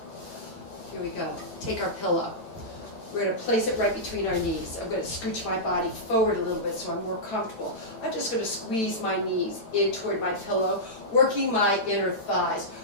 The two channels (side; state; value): right; late; 9.0 ms